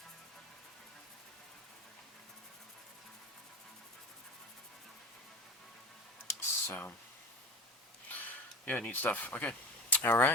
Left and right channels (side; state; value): both; normal; correlation 0.32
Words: So, yeah, neat stuff. Okay.